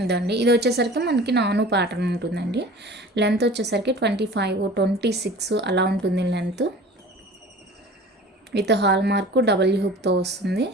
ఇదండి, ఇది వచ్చేసరికి మనకి నాను ప్యాటర్న్ ఉంటుందండి. లెంత్ వచ్చేసరికి 25, 26 అలా ఉంటుంది length. With hallmark double హుక్తో వస్తుంది.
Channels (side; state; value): both; normal; correlation 0.42